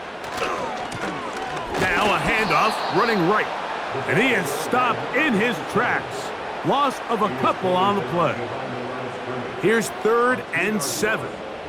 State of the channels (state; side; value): identical; both; correlation 1.00